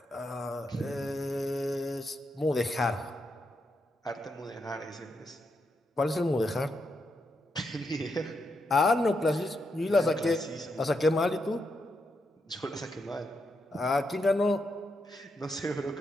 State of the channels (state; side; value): normal; both; correlation 0.82